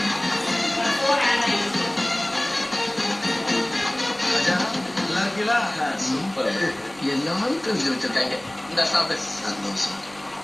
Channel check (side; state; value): right; noise; rumble, 26 dB below the sound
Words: எல்லாரும் தெரிஞ்சு வச்சிருக்காங்க. இந்த சாப்பிட்டு சந்தோஷம்.